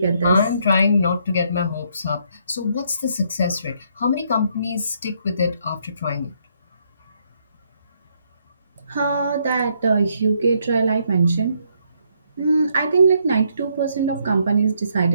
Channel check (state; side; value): inverted; both; correlation -0.72